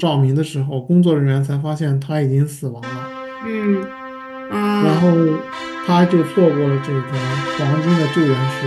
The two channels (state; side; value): identical; both; correlation 1.00